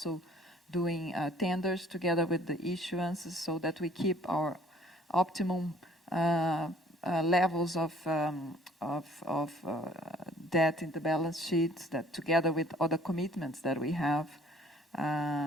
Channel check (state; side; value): normal; both; correlation 0.55